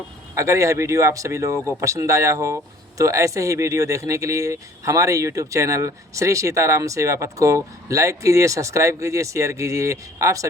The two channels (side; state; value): both; normal; correlation 0.54